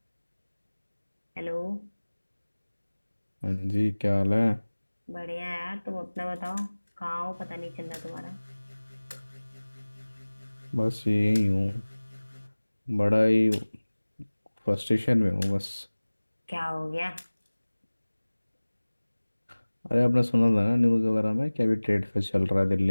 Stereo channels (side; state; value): both; inverted; correlation -1.00